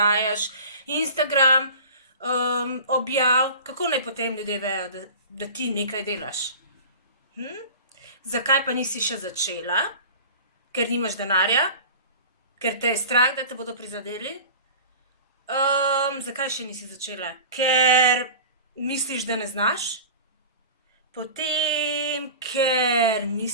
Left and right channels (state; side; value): inverted; both; correlation -0.37